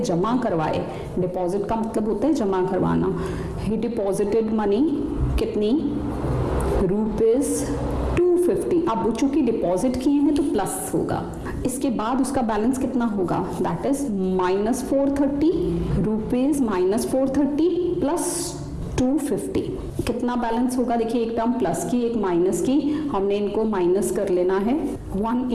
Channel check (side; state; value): both; identical; correlation 1.00